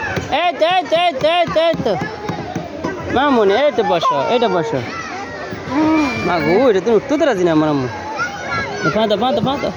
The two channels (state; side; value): identical; both; correlation 1.00